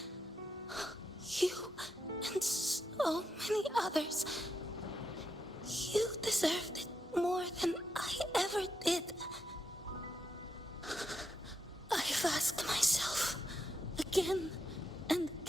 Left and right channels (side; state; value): both; normal; correlation 0.83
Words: You and so many others. You deserved it more than I ever did. I've asked myself again and